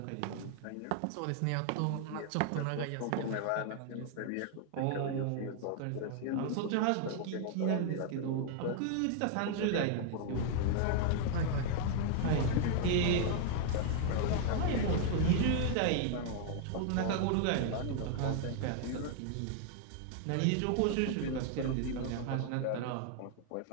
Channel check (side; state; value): both; different; correlation 0.00